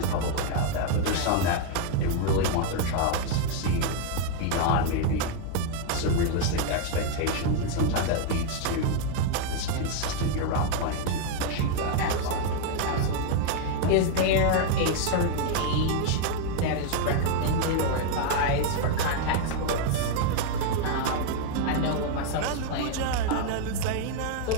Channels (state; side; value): different; both; correlation 0.00